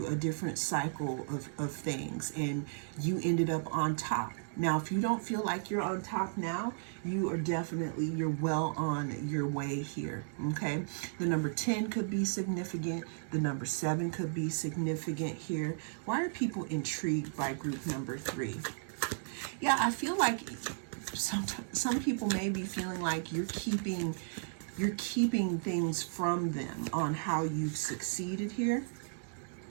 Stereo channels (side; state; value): left; silent; digital silence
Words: a different cycle of things and you ended up on top. Now, if you don't feel like you're on top now, you are definitely, you're well on your way here, okay? The number 10 could be significant. The number 7 could be significant here. Why are people intrigued by group number 3? Yeah, I feel like some people may be feeling like you're keeping things from them on how you've succeeded here.